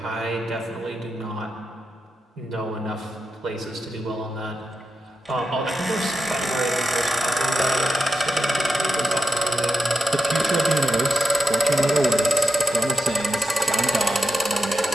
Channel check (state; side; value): normal; both; correlation 0.89